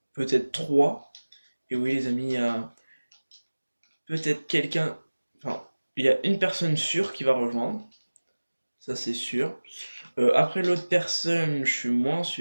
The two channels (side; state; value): both; inverted; correlation -1.00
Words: peut-être trois. Et oui les amis, il y a peut-être quelqu'un, enfin il y a une personne sûre qui va rejoindre, ça c'est sûr. Après l'autre personne, je suis moins